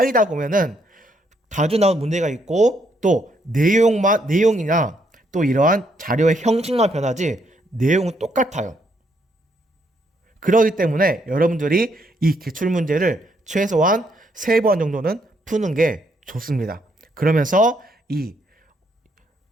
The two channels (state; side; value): normal; both; correlation 0.73